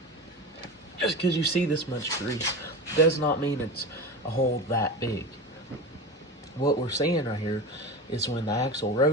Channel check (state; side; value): normal; both; correlation 0.27